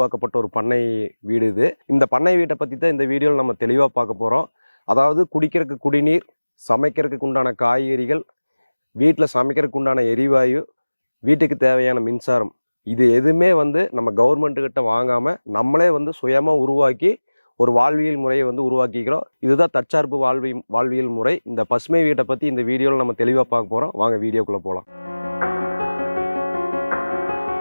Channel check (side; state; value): both; inverted; correlation -1.00